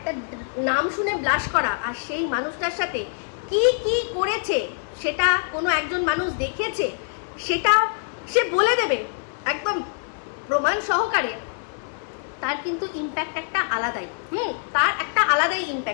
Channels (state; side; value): silent; right; digital silence